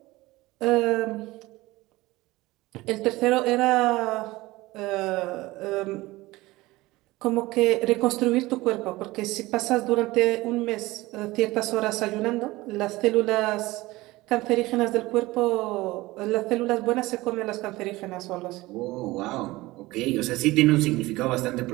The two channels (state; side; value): quieter; left; 19.7 dB